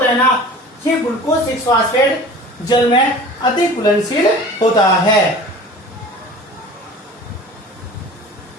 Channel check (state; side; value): normal; both; correlation 0.41